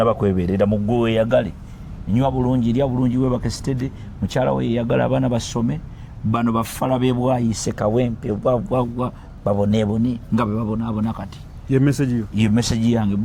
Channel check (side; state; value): both; identical; correlation 1.00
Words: kwebeerera mu gwe weeyagale nywa bulungi lya bulungi webake stede mukyala we yeeyagala abaana basome bano bafala bebwayise kawempe bwabwabwa baboneebone nga bwe babonaabona kati ye message yange